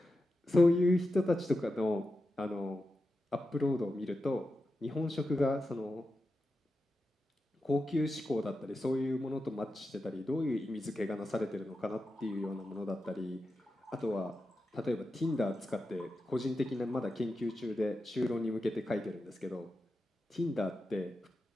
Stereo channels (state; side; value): normal; both; correlation 0.90